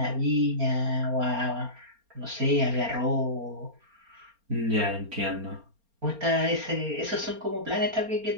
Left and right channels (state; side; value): late; left; 4.3 ms